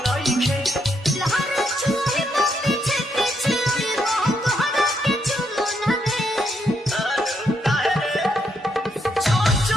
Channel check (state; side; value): normal; both; correlation 0.77